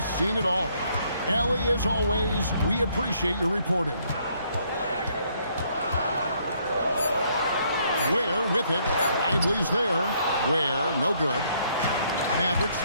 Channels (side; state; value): both; inverted; correlation -0.68